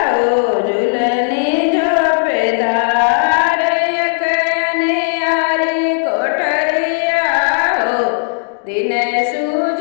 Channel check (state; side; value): silent; right; digital silence